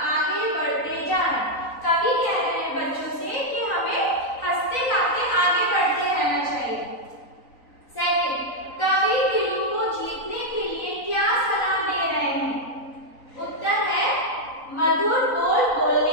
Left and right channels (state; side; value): late; right; 3.9 ms